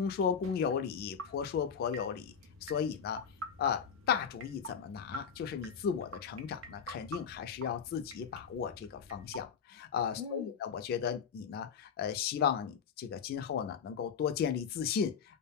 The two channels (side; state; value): right; quieter; 6.9 dB